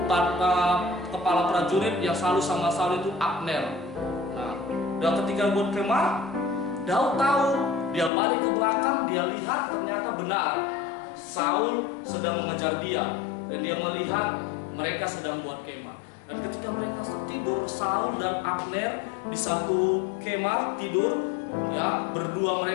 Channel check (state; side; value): drops out; right; at 8.1 s